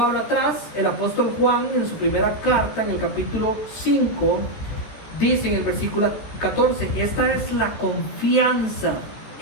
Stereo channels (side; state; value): right; late; 14 ms